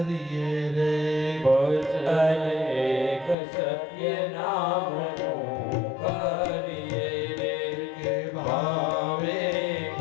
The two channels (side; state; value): right; drops out; at 3.4 s